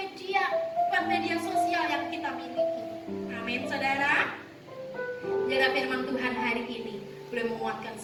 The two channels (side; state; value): both; identical; correlation 1.00